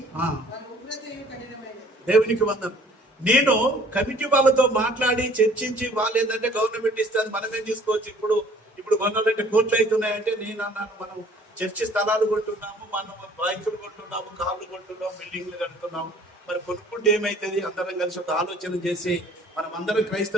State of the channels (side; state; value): both; normal; correlation 0.54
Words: ఆ. వారి ఉగ్రతయు కఠినమైనది. దేవునికి వందనం. నేను కమిటీ వాళ్ళతో మాట్లాడి చర్చించి వాళ్ళు ఏంటంటే గవర్నమెంట్ ఇస్తుంది మనమేం తీసుకోవచ్చు. ఇప్పుడు కొనాలంటే కోట్లు అవుతున్నాయంటే నేను అన్నాను, మనం చర్చి స్థలాలు కొంటున్నాము, మనం బైకులు కొంటున్నాము, కార్లు కొంటున్నాము, బిల్డింగ్లు కడుతున్నాము. మరి కొనుక్కుంటే ఏమైతుంది? అందరం కలిసి ఒక ఆలోచన చేసి మనం అందరం